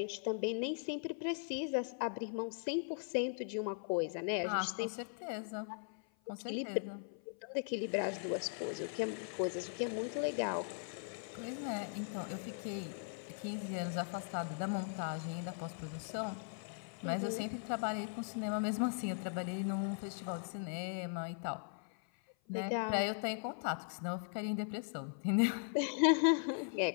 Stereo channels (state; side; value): silent; right; 52 dB below the other